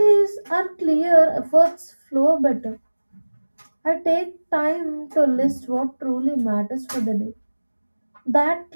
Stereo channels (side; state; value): both; inverted; correlation -1.00